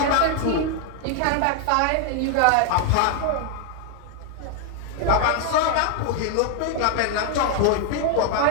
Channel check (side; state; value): both; different; correlation 0.00